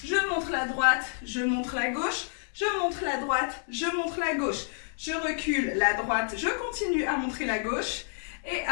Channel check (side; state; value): right; silent; 59 dB below the other